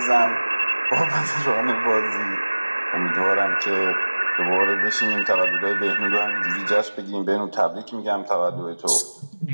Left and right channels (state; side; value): inverted; both; correlation -1.00